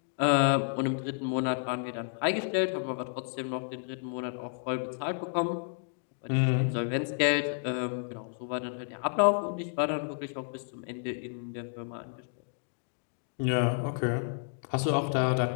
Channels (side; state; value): right; silent; digital silence